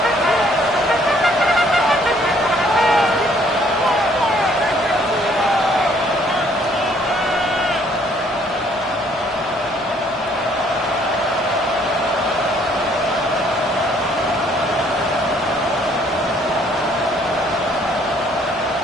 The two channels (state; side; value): normal; both; correlation 0.63